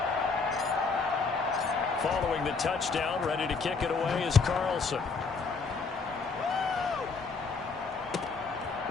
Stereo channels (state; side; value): quieter; right; 4.6 dB